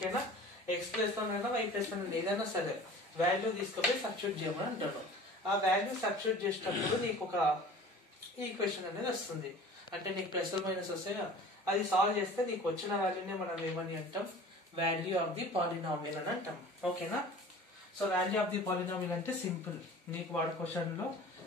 ఎక్స్ ప్లేస్ లోనైనా వై ప్లేస్ లో ఏదైనా సరే వాల్యూ తీసుకుపోయి సబ్స్టిట్యూట్ చేయమని అంటాడు. ఆ వాల్యూ సబ్స్టిట్యూట్ చేసేటప్పుడు నీకు ఒక ఈక్వేషన్ అనేది వస్తుంది. అంటే నీకు ప్లస్ మైనస్ వస్తాయి, అది సాల్వ్ చేస్తే నీకు వచ్చిన వాల్యూనే మనం ఏమని అంటాం, వాల్యూ ఆఫ్ ది పాలినామియల్ అని అంటాం. ఓకేనా? So value of the polynomial అంటే సింపుల్. నీకు వాడు క్వశ్చన్ లో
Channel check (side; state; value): both; normal; correlation 0.42